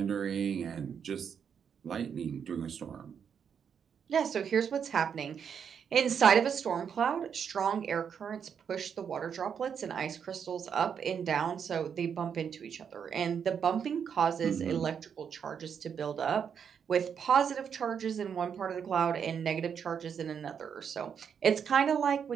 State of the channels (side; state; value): left; quieter; 7.4 dB